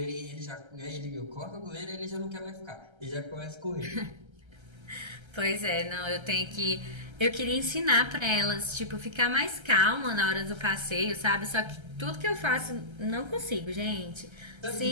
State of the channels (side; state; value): left; late; 1.3 ms